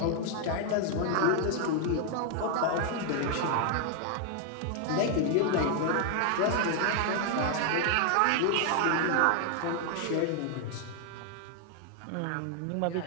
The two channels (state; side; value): different; both; correlation 0.00